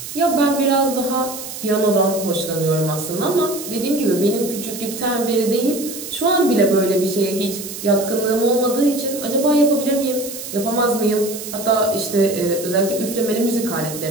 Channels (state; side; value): noise; right; hiss, 10 dB below the sound